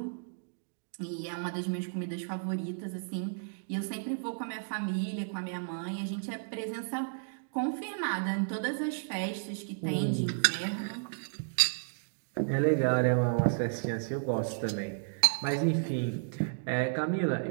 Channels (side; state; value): left; silent; digital silence